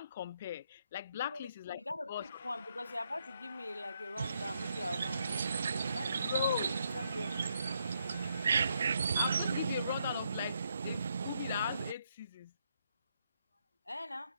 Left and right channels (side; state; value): both; inverted; correlation -0.77